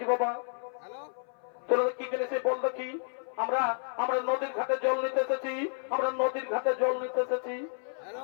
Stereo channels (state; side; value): silent; right; 56 dB below the other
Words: বাবা? তোরা কি জন্য সে বলতো কি? আমরা আমরা নদীর ঘাটে জল নিতে এসেছি, আমরা নদীর ঘাটে জল নিতে এসেছি।